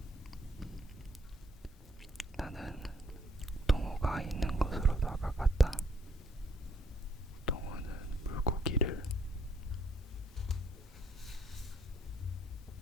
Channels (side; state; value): both; normal; correlation 0.68